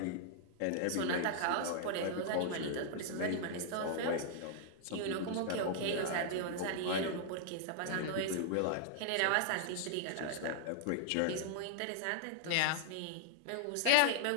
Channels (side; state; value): both; different; correlation -0.01